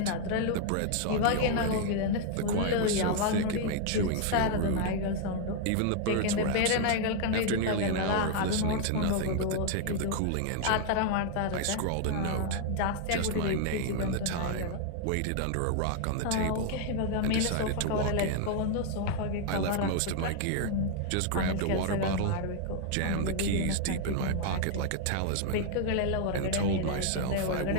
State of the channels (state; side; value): different; both; correlation 0.00